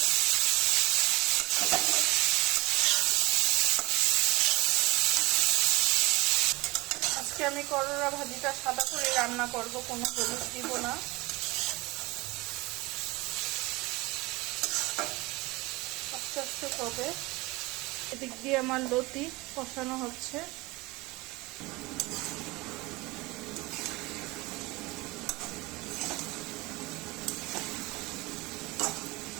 আজকে আমি করলা ভাজিটা সাদা করে রান্না করব, কোনো হলুদ দিব না। আস্তে আস্তে হবে। এদিক দিয়ে আমার লতি কষানো হচ্ছে।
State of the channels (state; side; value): quieter; left; 22.5 dB